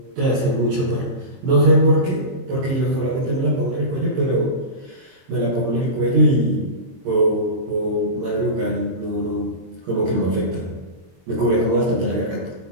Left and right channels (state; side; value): late; left; 22 ms